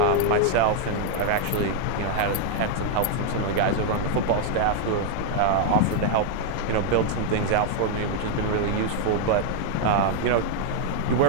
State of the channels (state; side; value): different; both; correlation 0.00